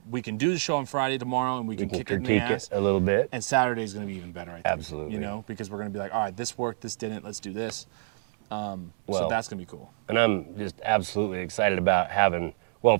we can do the show on Friday tomorrow, and we can kick it in the ass a little bit. And Saturday is going to be even better, I think. Absolutely. Because we're going to be like, all right, this worked, this didn't, let's do this. So that's going to be cool. And I'm just absolutely excited about having. Well,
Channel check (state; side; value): silent; left; digital silence